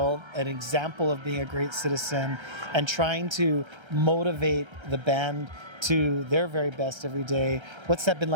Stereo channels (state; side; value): late; left; 1.3 ms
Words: an example of being a great citizen, and trying to motivate the band to their very best every day. What's that been